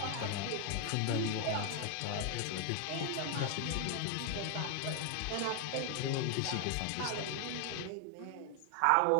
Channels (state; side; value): different; both; correlation 0.00